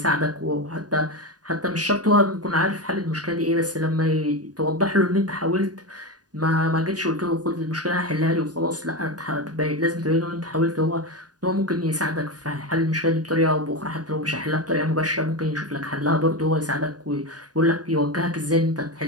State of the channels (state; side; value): late; left; 0.68 ms